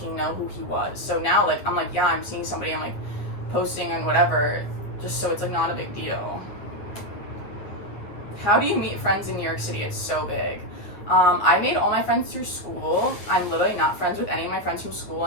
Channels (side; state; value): right; late; 9.7 ms